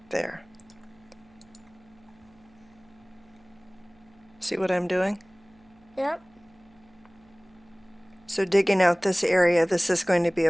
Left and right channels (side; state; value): right; noise; hum, 30 dB below the sound